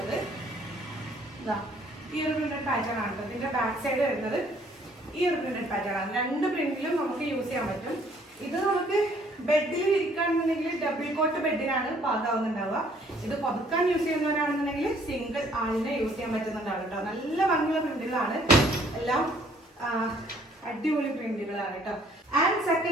ഇതാ ഈ ഒരു പ്രിന്റഡ് പാറ്റേൺ ആണ്. ഇതിന്റെ ബാക്ക് സൈഡ് വരുന്നത് ഈ ഒരു പ്രിന്റഡ് പാറ്റേൺ ആണ്. രണ്ട് പ്രിന്റിലും നമുക്ക് യൂസ് ചെയ്യാൻ പറ്റും. ഇത് നമുക്ക് ബെഡിൽ ഇരിക്കുകയാണെന്നുണ്ടെങ്കിൽ ഡബിൾ കോട്ട് ബെഡിനാണ് പാകാവുന്നുണ്ടാവുക. ഇത് പുതുക്കാൻ യൂസ് ചെയ്യുന്നവരാണെന്നുണ്ടെങ്കിൽ സിംഗിൾ ആളിനെ യൂസ് ചെയ്യാൻ പറ്റുന്നുണ്ടാവും കേട്ടോ. നല്ല ഭംഗിയുള്ള പ്രിന്റുകളാണ്, എല്ലാം അടിപൊളി പ്രിന്റുകളാണ് കേട്ടോ. ആൻഡ്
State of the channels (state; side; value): normal; both; correlation 0.61